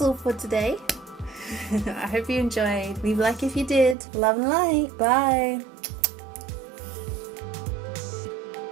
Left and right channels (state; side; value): drops out; left; at 4.0 s